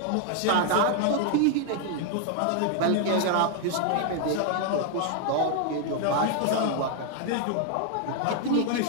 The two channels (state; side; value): different; both; correlation 0.00